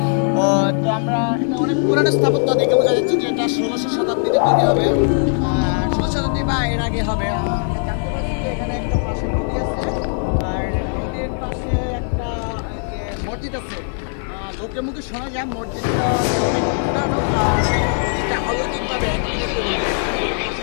তো আমরা এটা অনেক পুরানো স্থাপত্য দেখে বোঝা যাচ্ছে যে এটা 16শো শতাব্দীতে তৈরি হবে, 16 শতাব্দী বা এর আগে হবে। আমরা জানতে পারছি যে এখানে একটা পাশে নদী আছে, আর নদীর পাশে একটা যে মসজিদ আছে। লোকের মুখে শোনা যায় মসজিদটা অনেক পুরানো, আর মসজিদটা অলৌকিকভাবে একদিনে তৈরি হয়েছে।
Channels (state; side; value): silent; right; 57 dB below the other